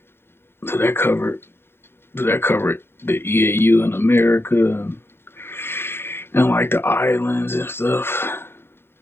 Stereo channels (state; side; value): late; right; 0.11 ms